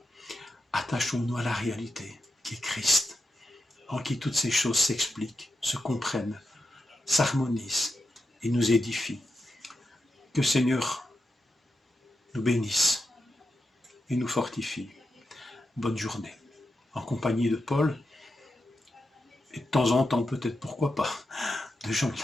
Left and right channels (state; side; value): normal; both; correlation 0.87